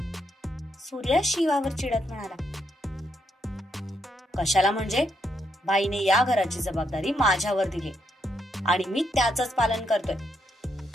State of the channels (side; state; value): both; normal; correlation 0.78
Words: सूर्या शिवावर चिडत म्हणाला. कशाला म्हणजे? बाईने या घराची जबाबदारी माझ्यावर दिली आणि मी त्याचंच पालन करतोय.